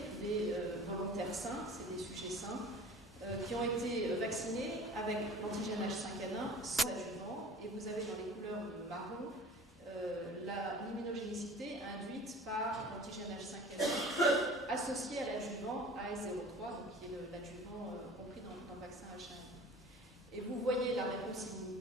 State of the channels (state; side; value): normal; both; correlation 0.43